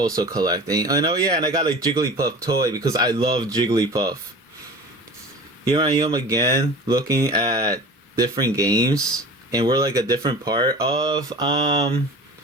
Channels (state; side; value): normal; both; correlation 0.38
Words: collecting. I know, yeah, and I got a Jigglypuff toy because I love Jigglypuff. Here I am again looking at different games, and we're like a different part of